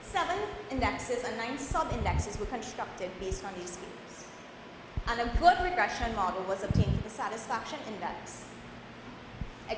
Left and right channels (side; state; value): both; identical; correlation 1.00